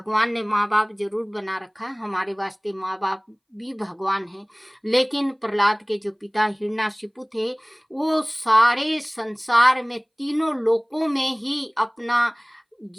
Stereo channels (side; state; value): both; identical; correlation 1.00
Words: ने माँ बाप जरूर बना रखा है, हमारे वास्ते माँ बाप भी भगवान हैं। लेकिन प्रहलाद के जो पिता हिरण्यकशिपु थे, वो सारे संसार में तीनों लोकों में ही अपना